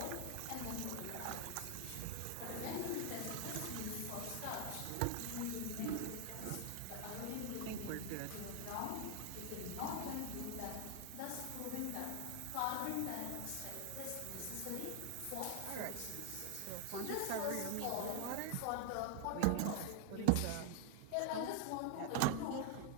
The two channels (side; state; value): both; different; correlation 0.01